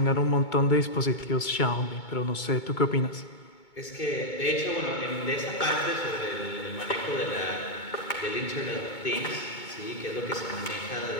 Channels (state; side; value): late; right; 2.2 ms